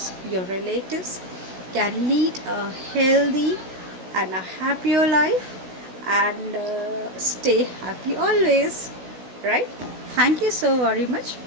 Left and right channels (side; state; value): left; late; 16 ms